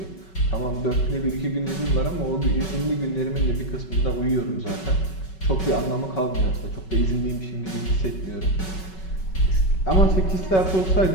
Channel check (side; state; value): right; late; 5.3 ms